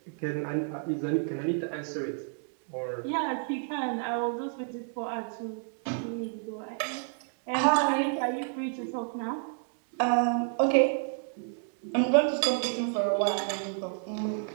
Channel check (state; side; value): silent; left; 58 dB below the other